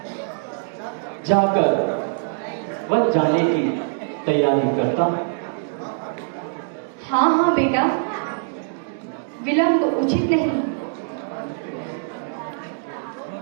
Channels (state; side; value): silent; left; digital silence